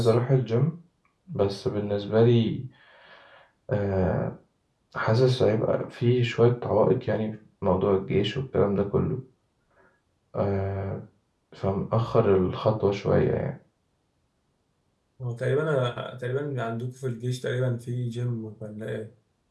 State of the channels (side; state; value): both; identical; correlation 1.00